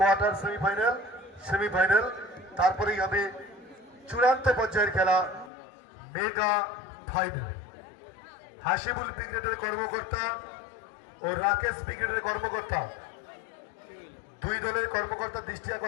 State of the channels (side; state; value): right; drops out; at 5.5 s